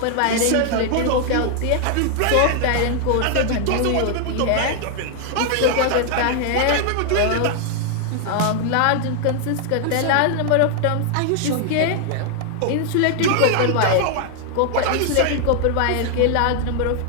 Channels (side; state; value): both; different; correlation 0.00